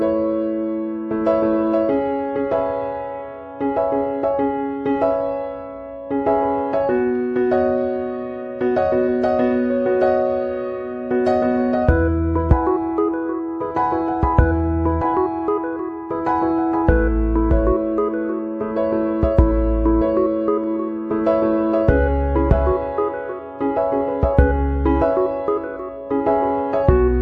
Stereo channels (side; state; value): both; identical; correlation 1.00